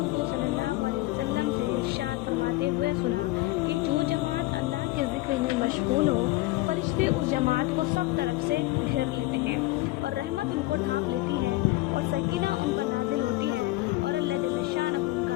صلی اللہ علیہ وسلم سے ارشاد فرماتے ہوئے سنا کہ جو جماعت اللہ کے ذکر میں مشغول ہو، فرشتے اس جماعت کو سب طرف سے گھیر لیتے ہیں اور رحمت ان کو ڈھانپ لیتی ہے اور سکینہ ان پر نازل ہوتی ہے اور اللہ جل شانہ ان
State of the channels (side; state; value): right; quieter; 19.0 dB